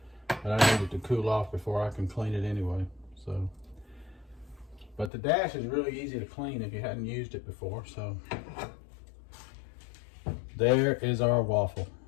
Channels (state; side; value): drops out; right; at 5.1 s